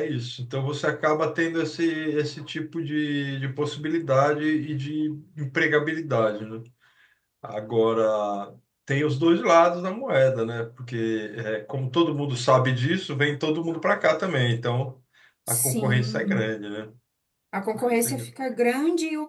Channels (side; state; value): both; identical; correlation 1.00